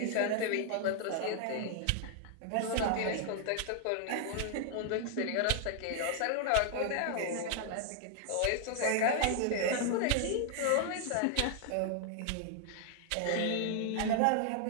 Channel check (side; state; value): both; different; correlation 0.00